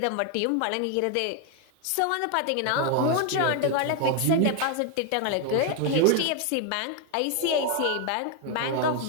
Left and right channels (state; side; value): different; both; correlation 0.01